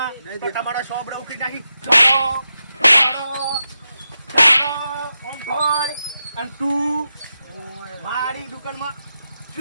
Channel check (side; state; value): both; inverted; correlation -0.89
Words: તો તમારા સોબડે ઉખી નાખી અને તું મારી દુકાનમાં